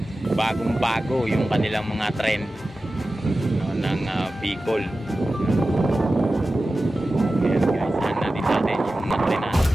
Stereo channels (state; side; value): normal; both; correlation 0.95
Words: bagong-bago yung kanilang mga trend, no, ng Bicol. Ayan guys, sana din natin yung mga trend natin.